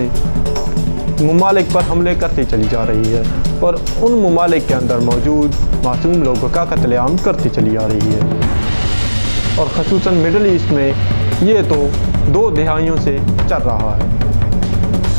ममालिक पर हमले करती चली जा रही है और उन ममालिक के अंदर मौजूद मासूम लोगों का कत्लेआम करती चली आ रही है। और ख़ुसूसन मिडल ईस्ट में ये तो 2 दहाइयों से चल रहा है।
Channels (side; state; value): both; inverted; correlation -1.00